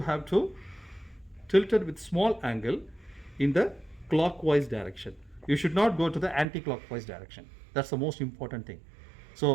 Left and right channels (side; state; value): left; drops out; at 6.5 s